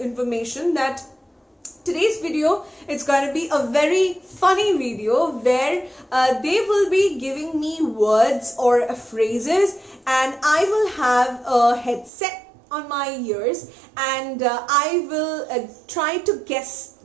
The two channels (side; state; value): left; drops out; at 12.1 s